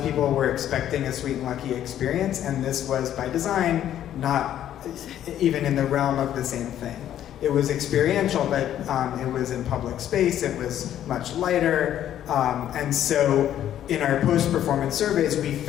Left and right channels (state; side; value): quieter; right; 11.2 dB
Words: were expecting a Sweet and Lucky experience, and this was by design not even in the realm of the same thing. It was experiential, but it was in public space, it was much lighter, and so in our post-performance surveys, we